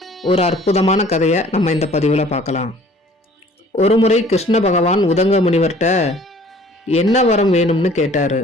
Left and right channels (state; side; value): normal; both; correlation 0.53